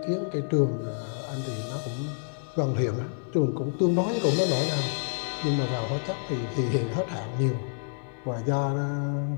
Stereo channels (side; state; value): right; silent; digital silence